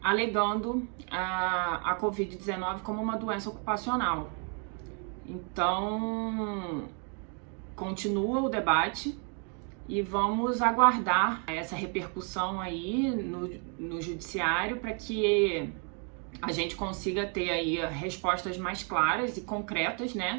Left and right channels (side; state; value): left; quieter; 39.1 dB